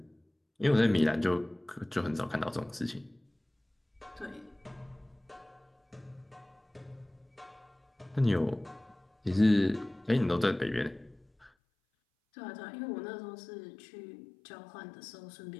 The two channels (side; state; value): right; drops out; at 11.5 s